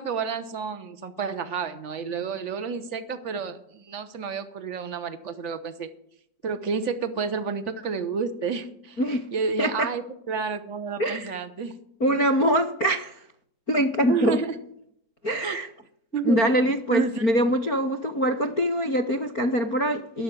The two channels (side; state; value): right; late; 4.4 ms